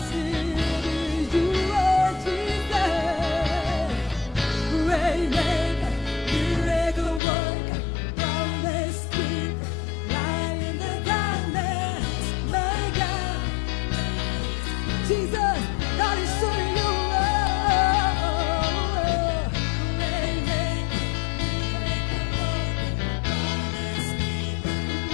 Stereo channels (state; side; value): drops out; right; at 7.2 s